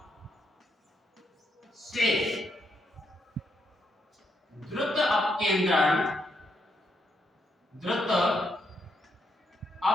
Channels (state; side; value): normal; both; correlation 0.78